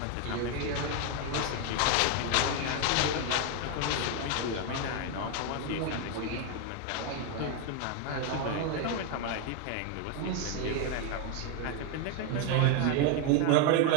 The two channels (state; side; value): different; both; correlation 0.01